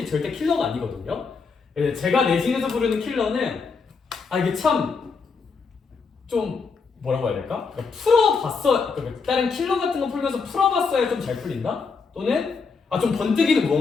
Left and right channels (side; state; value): right; quieter; 5.0 dB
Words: 절대 킬러가 아니거든요. 제가 내신에서 부르는 킬러는 이게 참 좀 뭐라고 해야 될까? 그러니까 풀어봤어. 그러니까 다른 킬러 같은 거 풀면서 풀어봤어야 좀 잘 풀린다. 또는 좀 번뜩이는